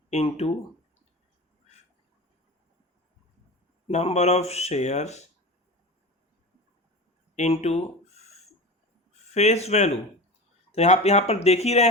into number of shares into face value. तो यहाँ पर देख ही रहे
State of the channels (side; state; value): both; normal; correlation 0.29